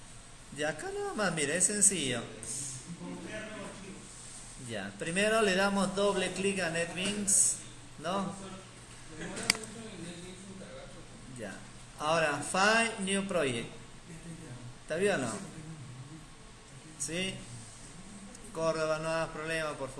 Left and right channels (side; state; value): both; identical; correlation 1.00